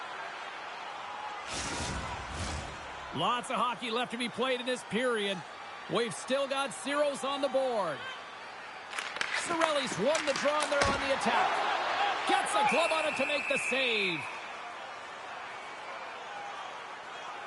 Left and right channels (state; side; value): identical; both; correlation 1.00